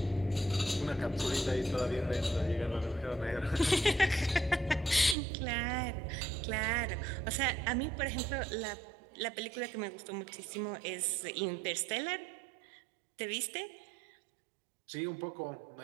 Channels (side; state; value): left; drops out; at 5.2 s